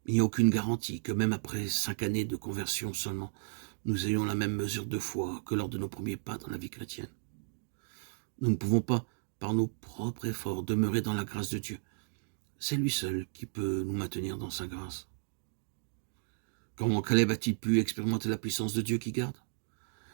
Il n'y a aucune garantie que même après 5 années de conversion seulement, nous ayons la même mesure de foi que lors de nos premiers pas dans la vie chrétienne. Nous ne pouvons pas, par nos propres efforts, demeurer dans la grâce de Dieu. C'est lui seul qui peut nous maintenir dans sa grâce. Comment Caleb a-t-il pu expérimenter la puissance de Dieu qui garde?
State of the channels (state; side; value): silent; left; digital silence